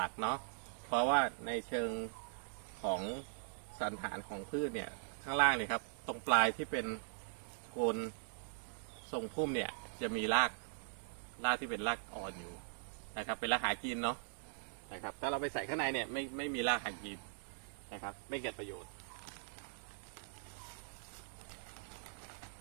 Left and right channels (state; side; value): silent; left; digital silence